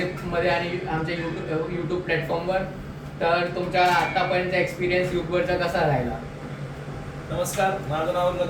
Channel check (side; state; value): both; identical; correlation 1.00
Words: आणि आमच्या यूट्यूब प्लॅटफॉर्मवर. तर तुमचा आत्तापर्यंतचा एक्सपिरियन्स यूट्यूबवरचा कसा राहिला? नमस्कार, माझं नाव